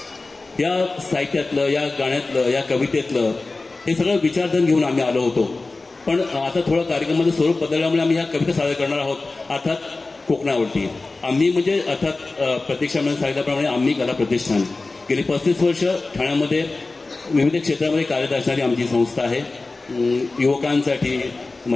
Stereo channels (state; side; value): quieter; right; 3.5 dB